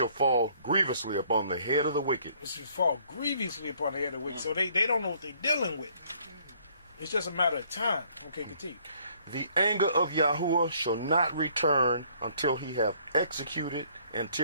fall grievously upon the head of the wicked. It shall fall grievously upon the head of the wicked. So they don't know what they're dealing with. It's just a matter of time. Okay, continue. The anger of Yahudah shall not return until he have executed,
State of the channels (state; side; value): inverted; both; correlation -0.63